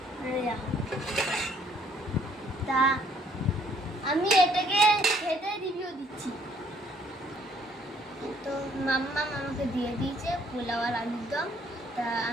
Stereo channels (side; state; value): both; normal; correlation 0.64